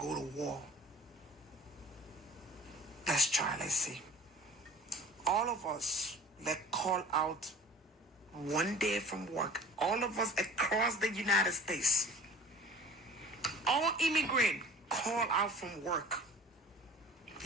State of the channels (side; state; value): both; normal; correlation 0.45